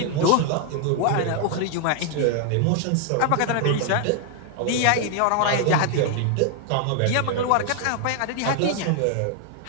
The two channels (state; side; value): different; both; correlation 0.00